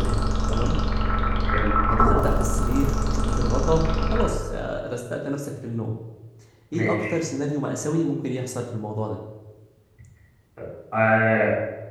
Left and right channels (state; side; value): identical; both; correlation 1.00